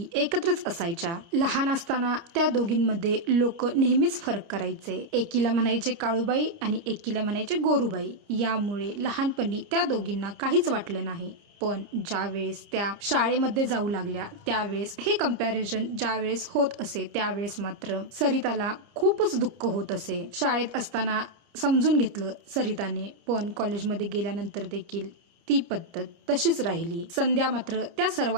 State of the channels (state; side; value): late; left; 30 ms